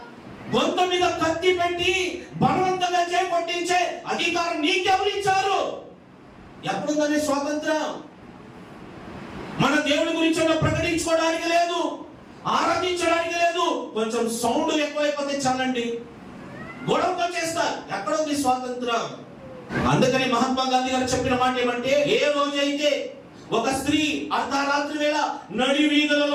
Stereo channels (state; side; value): identical; both; correlation 1.00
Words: గొంతు మీద కత్తి పెట్టి బలవంతంగా చేపట్టించే అధికారం నీకెవరు ఇచ్చారు? ఎప్పుడుందని స్వాతంత్రం? మన దేవుడి గురించి ప్రకటించుకోవడానికి లేదు, ఆరాధించడానికి లేదు. కొంచెం సౌండ్ ఎక్కువైపోతే చాలండి గొడవతో చేస్తారు. ఎక్కడుంది స్వాతంత్రం? అందుకని మహాత్మా గాంధీ గారు చెప్పిన మాట ఏమంటే, ఏ రోజైతే ఒక స్త్రీ అర్ధరాత్రి వేళ నడి